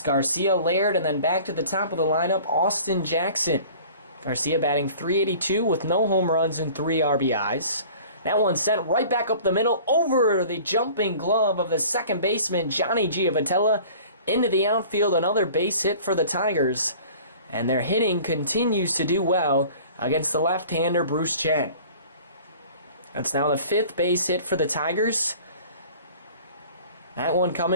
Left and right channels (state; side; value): inverted; both; correlation -0.46